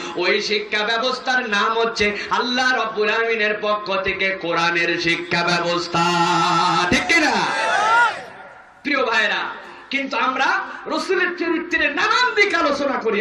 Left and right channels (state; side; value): identical; both; correlation 1.00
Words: ওই শিক্ষা ব্যবস্থার নাম হচ্ছে আল্লাহ রব্বুল আলামিনের পক্ষ থেকে কোরআনের শিক্ষা ব্যবস্থা, ঠিক কিনা? প্রিয় ভাইরা, কিন্তু আমরা রাসূলের চরিত্রের নানান দিক আলোচনা করি